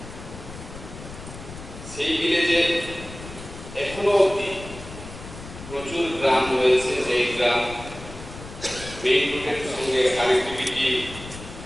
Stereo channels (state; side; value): noise; left; rumble, 13 dB below the sound